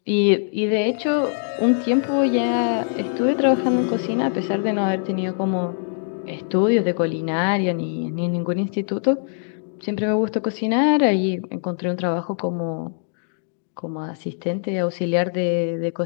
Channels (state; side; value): silent; right; digital silence